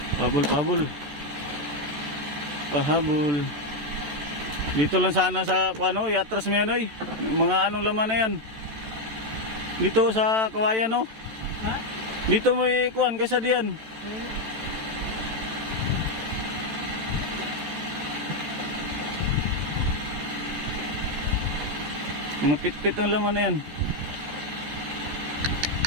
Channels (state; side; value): late; left; 14 ms